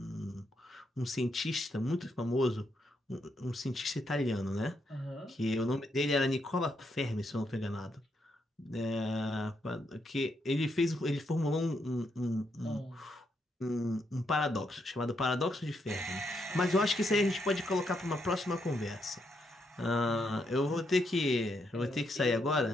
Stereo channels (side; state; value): both; normal; correlation 0.79